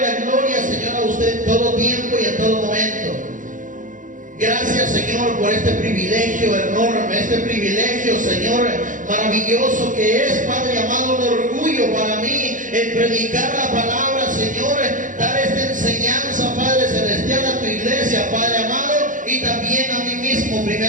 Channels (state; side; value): late; left; 0.38 ms